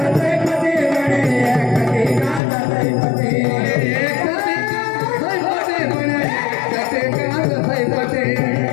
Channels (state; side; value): drops out; right; at 2.4 s